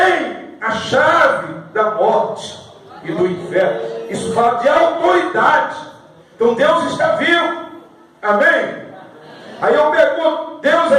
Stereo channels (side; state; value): both; identical; correlation 1.00